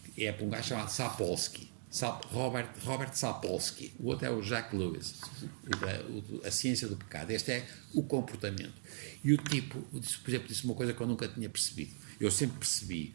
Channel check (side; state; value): left; silent; digital silence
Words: é para um gajo chamado Sapolsky, Robert Sapolsky. O outro é o Jack Lewis, A Ciência do Pecado. Este é o comportamento. E o tipo, por exemplo, disse uma coisa que eu nunca tinha percebido. Eu sempre percebi